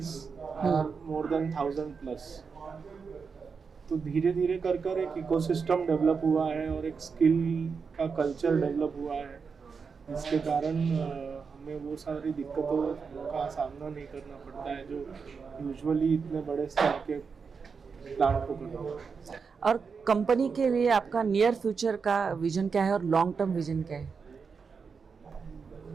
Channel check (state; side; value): quieter; left; 5.5 dB